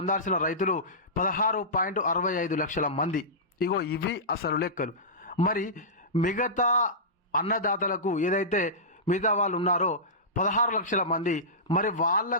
రైతులు 16.65 లక్షల మంది. ఇగో ఇవి అసలు లెక్కలు. మరి మిగతా అన్నదాతలకు ఏదైతే మిగతా వాళ్ళు ఉన్నారో 16 లక్షల మంది, మరి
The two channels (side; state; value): both; normal; correlation -0.18